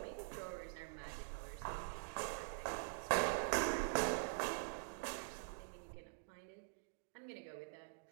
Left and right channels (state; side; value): silent; left; digital silence